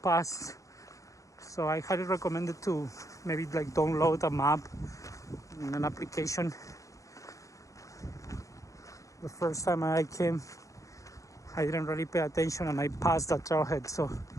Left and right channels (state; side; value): late; right; 0.16 ms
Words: So I highly recommend it to maybe like download a map in an application. The first time I came, I didn't really pay attention and I passed the trailhead, so